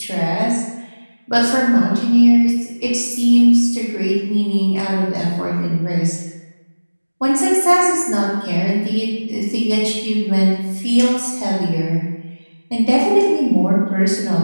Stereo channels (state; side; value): inverted; both; correlation -1.00